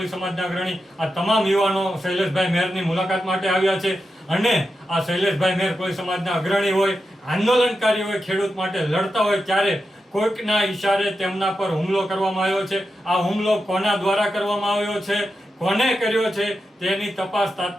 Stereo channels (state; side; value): normal; both; correlation 0.89